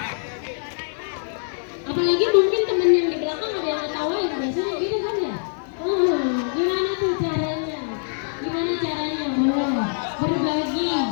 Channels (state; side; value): silent; right; 56 dB below the other